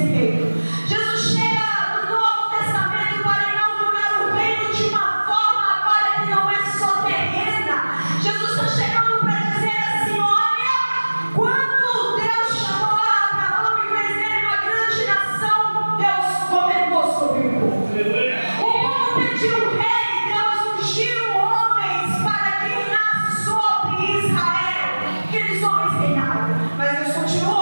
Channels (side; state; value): both; inverted; correlation -1.00